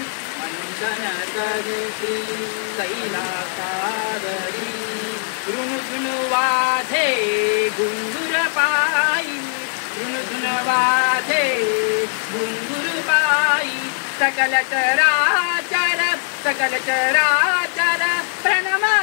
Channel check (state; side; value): silent; right; digital silence